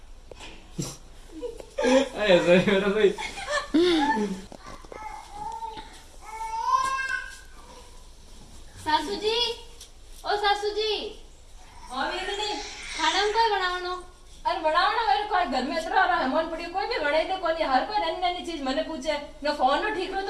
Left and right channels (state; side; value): identical; both; correlation 1.00